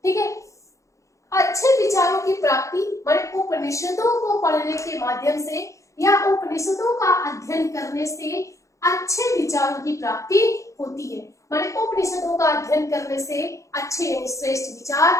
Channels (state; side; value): late; right; 0.15 ms